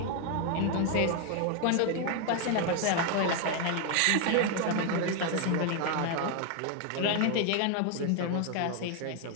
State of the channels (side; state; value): both; different; correlation 0.01